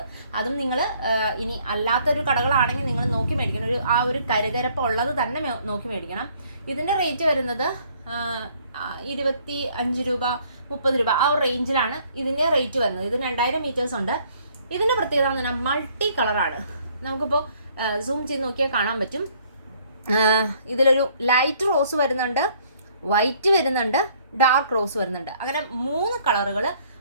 അതും നിങ്ങൾ ഇനി അല്ലാത്തൊരു കടകളാണെങ്കിൽ നിങ്ങൾ നോക്കി മേടിക്കണം. ഒരു കരുകരപ്പ് ഉള്ളത് തന്നെ നോക്കി മേടിക്കണം. ഇതിൻ്റെ റേറ്റ് വരുന്നത് 25 രൂപ 30 രൂപ ആ ഒരു റേഞ്ചിലാണ് ഇതിൻ്റെ റേറ്റ് വരുന്നത്. ഇത് 2000 മീറ്റേഴ്സ് ഉണ്ട്. ഇതിൻ്റെ പ്രത്യേകത എന്ന് പറഞ്ഞാൽ മൾട്ടി കളറാണ്. നമുക്കിപ്പോൾ സൂം ചെയ്ത് നോക്കിയാൽ കാണാൻ പറ്റും. ഇതിലൊരു ലൈറ്റ് റോസ് വരുന്നുണ്ട്, വൈറ്റ് വരുന്നുണ്ട്, ഡാർക്ക് റോസ് വരുന്നുണ്ട്. അങ്ങനെ 3 കളറുകൾ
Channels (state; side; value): inverted; both; correlation -0.62